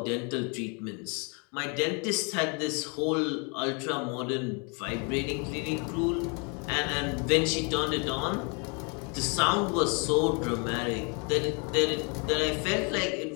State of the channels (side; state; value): right; quieter; 34.3 dB